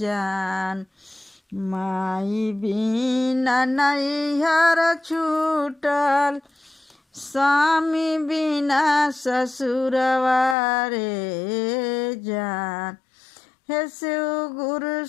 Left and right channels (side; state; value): right; drops out; at 10.6 s